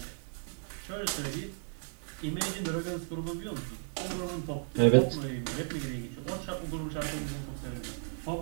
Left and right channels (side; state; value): left; silent; 55 dB below the other